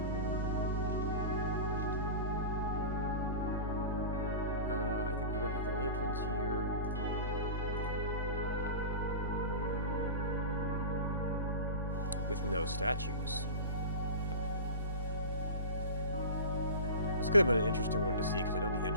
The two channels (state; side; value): inverted; both; correlation -0.30